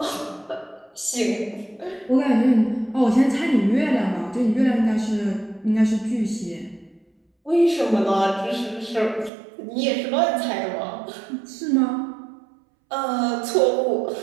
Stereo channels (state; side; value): drops out; left; at 9.3 s